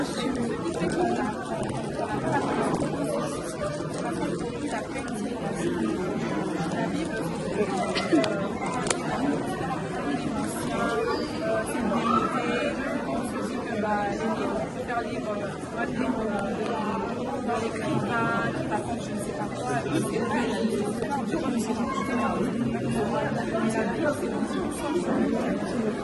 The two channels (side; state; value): both; identical; correlation 1.00